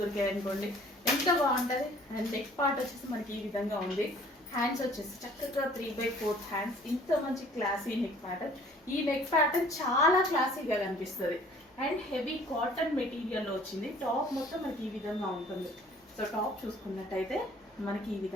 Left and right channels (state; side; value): normal; both; correlation 0.54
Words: దొరికాయి అనుకోండి ఎంత బాగుంటది. అండ్ నెక్ పార్ట్ వచ్చేసి మనకి ఈ విధంగా ఉంది. హ్యాండ్స్ వచ్చేసి చక్కగా 3/4 హ్యాండ్స్. ఇంత మంచి క్లాసీ నెక్ ప్యాటర్న్. ఈ నెక్ ప్యాటర్న్ చాలా క్లాసీగా కనిపిస్తుంది. అండ్ హెవీ కాటన్ మెటీరియల్ లో వచ్చింది. టాప్ మొత్తం మనకి ఈ విధంగా ఉంటుంది. సో టాప్ చూసుకున్నట్టయితే మనకి ఈ